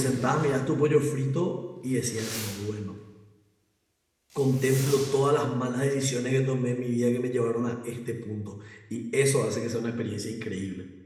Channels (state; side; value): identical; both; correlation 1.00